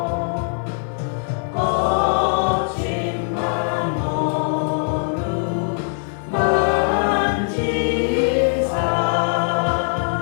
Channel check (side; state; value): right; silent; 60 dB below the other